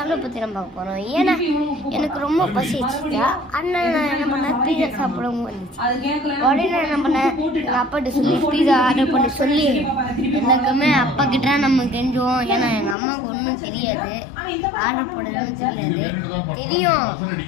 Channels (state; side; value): drops out; right; at 13.0 s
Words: பற்றி நம்ம பார்க்க போகிறோம். ஏன்னா எனக்கு ரொம்ப பசிச்சுட்டா அண்ணன் நான் என்ன பண்ணேன், பீஸா சாப்பிடவும் வந்துச்சு. உடனே நான் என்ன பண்ணேன், எங்கள் அப்பாட்ட சொல்லி பீஸா ஆர்டர் பண்ணி சொல்லி எனக்குமே அப்பா கிட்ட நம்ம கெஞ்சுவோம். ஏன்னா எங்கள் அம்மாவுக்கு ஒன்றும் தெரியாது, ஆர்டர் போடணும்னு தெரியும்,